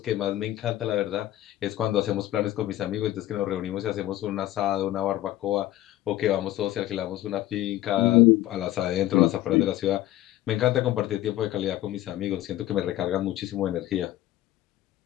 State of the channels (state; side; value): quieter; right; 14.8 dB